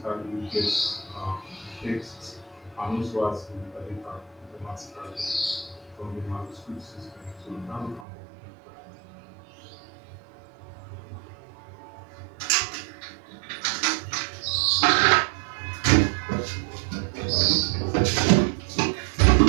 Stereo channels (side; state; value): left; drops out; at 8.1 s